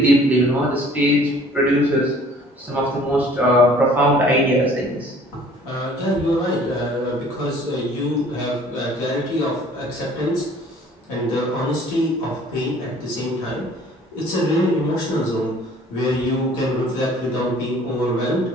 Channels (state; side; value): normal; both; correlation 0.53